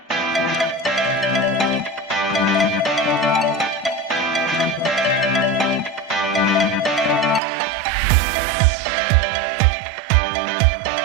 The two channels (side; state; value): left; drops out; at 7.4 s